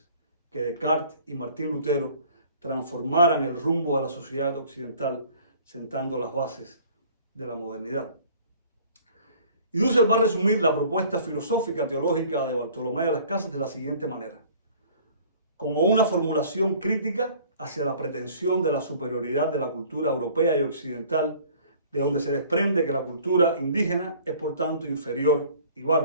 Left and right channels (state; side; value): inverted; both; correlation -0.52